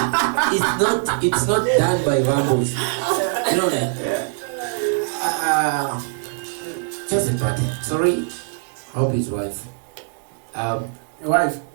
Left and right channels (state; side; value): silent; left; 62 dB below the other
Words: It's not done by Vambos. You know that? Just a party. Sorry. Hope his wife. Wife?